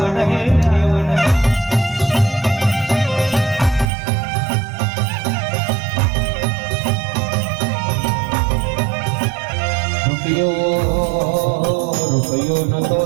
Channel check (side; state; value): left; drops out; at 3.9 s